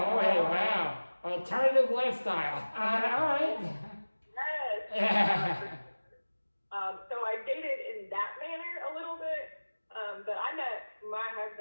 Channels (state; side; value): inverted; both; correlation -1.00